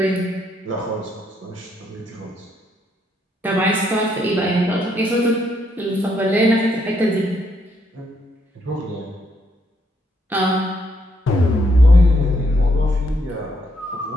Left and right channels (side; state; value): both; normal; correlation 0.74